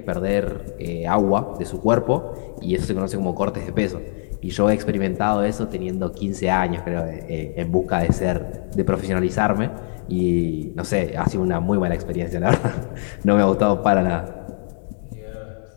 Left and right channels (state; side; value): silent; right; digital silence